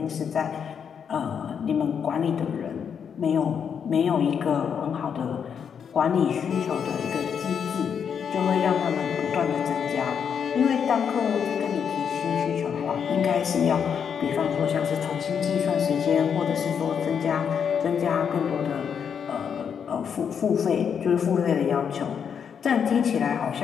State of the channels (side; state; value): right; quieter; 7.4 dB